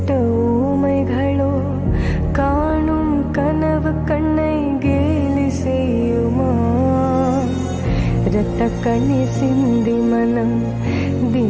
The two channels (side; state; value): both; identical; correlation 1.00